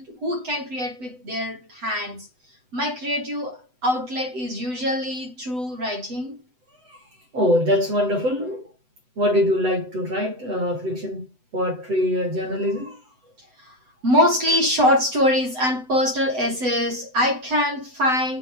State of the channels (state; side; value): late; left; 7.9 ms